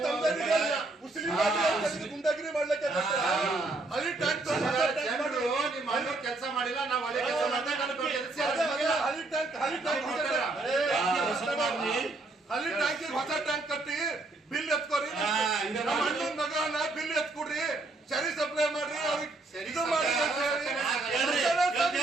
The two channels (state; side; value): quieter; left; 3.2 dB